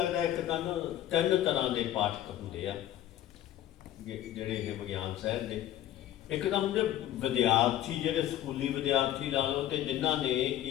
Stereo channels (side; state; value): right; quieter; 12.5 dB